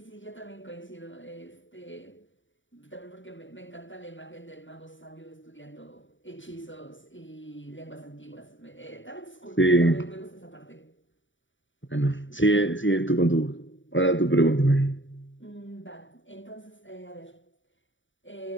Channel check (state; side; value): late; right; 0.55 ms